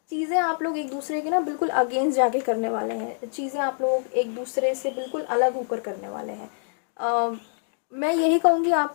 चीज़ें आप लोग एक दूसरे के बिल्कुल अगेंस्ट जाके करने वाले हैं, चीज़ें आप लोग एक दूसरे से बिल्कुल अलग होकर करने वाले हैं। मैं यही कहूँगी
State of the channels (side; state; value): right; silent; digital silence